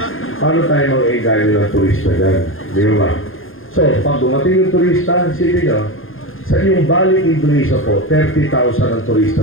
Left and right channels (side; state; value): right; late; 0.60 ms